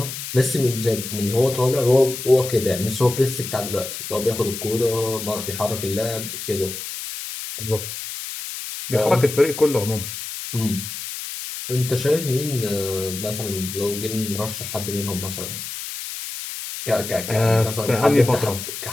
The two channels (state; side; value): noise; left; hiss, 8 dB below the sound